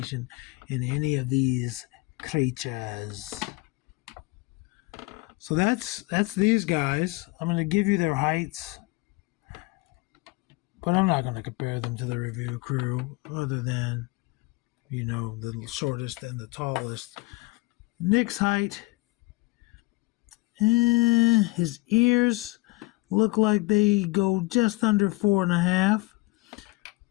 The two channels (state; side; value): quieter; right; 23.4 dB